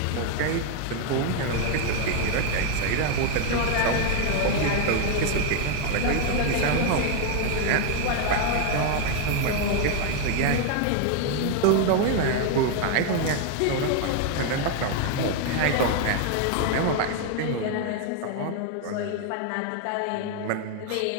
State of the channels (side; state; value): both; different; correlation 0.01